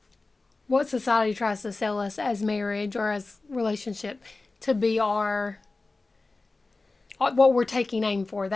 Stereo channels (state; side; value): quieter; right; 3.4 dB